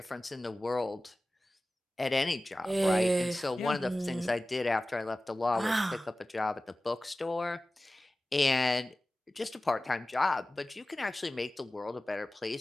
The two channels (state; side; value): normal; both; correlation 0.96